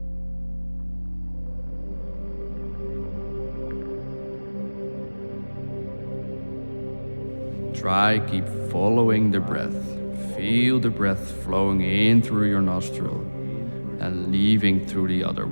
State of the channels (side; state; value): both; inverted; correlation -1.00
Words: Try keep following the breath. Feel the breath flowing in through your nostril and leaving through the other